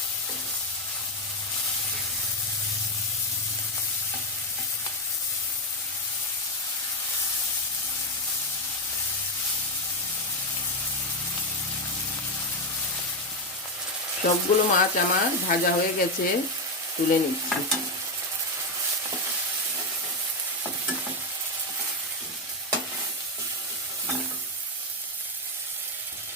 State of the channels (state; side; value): normal; both; correlation 0.07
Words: সবগুলো মাছ আমার ভাজা হয়ে গেছে, তুলে নিচ্ছি।